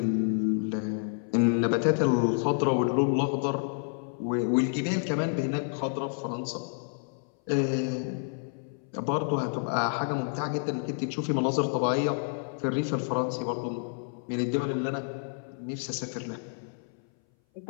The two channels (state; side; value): silent; right; 58 dB below the other